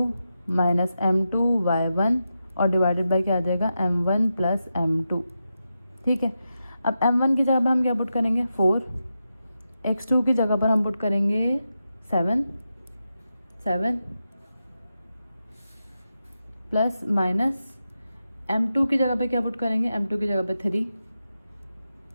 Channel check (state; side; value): inverted; both; correlation -0.88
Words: minus m2 y1 और डिवाइडेड बाय क्या आ जाएगा m1 प्लस m2। ठीक है, अब m1 की जगह पर हम क्या पुट करेंगे 4, x2 की जगह पर हम पुट करेंगे 7 प्लस माइनस m2 की जगह पे क्या पुट करेंगे, m2 की जगह पे 3,